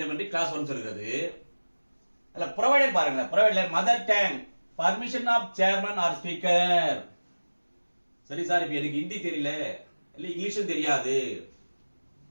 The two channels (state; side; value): inverted; both; correlation -1.00